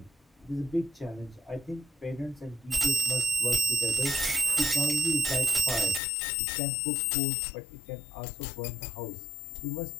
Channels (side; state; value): right; drops out; at 6.0 s